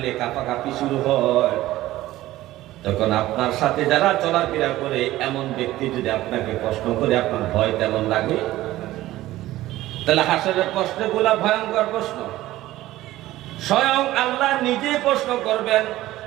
কাঁপাকাঁপি শুরু হয়। তখন আপনার সাথে যারা চলাফেরা করে এমন ব্যক্তি যদি আপনাকে প্রশ্ন করে, আপনার ভয় তেমন লাগে? তাহলে হাসরের প্রশ্নগুলা ভয়ঙ্কর প্রশ্ন। স্বয়ং আল্লাহ নিজে প্রশ্ন করবেন।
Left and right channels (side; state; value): left; quieter; 15.9 dB